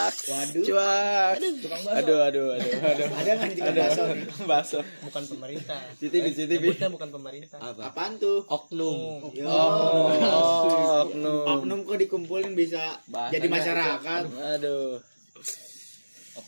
Waduh. Cuak. Aduh. Ada nggak nih tiga bakso nih? Baso. Bukan pemerintah. CCTV. Sebutnya bukan pemerintah. Apa? Apaan tuh? Oknum. Yo. Oknum. Oknum kok dikumpulin bisa Bahasanya jadi masyarakat. Aduh.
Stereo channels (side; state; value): both; inverted; correlation -1.00